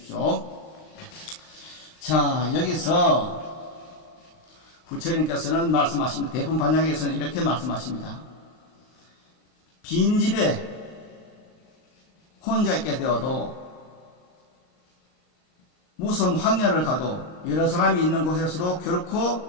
자, 여기서 부처님께서는 말씀하십니다. 대품반야경에서는 이렇게 말씀하십니다. 빈집에 혼자 있게 되어도 무슨 황야를 가도 여러 사람이 있는 곳에서도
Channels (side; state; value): right; late; 39 ms